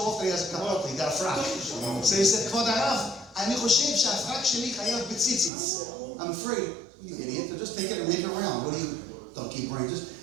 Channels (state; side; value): drops out; left; at 5.5 s